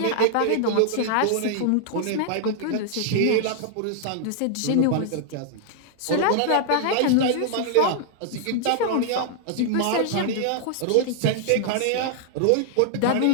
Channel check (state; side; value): different; both; correlation -0.01